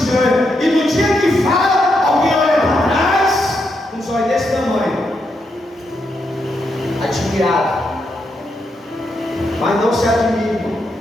Mas não se admire,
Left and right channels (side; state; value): both; normal; correlation 0.81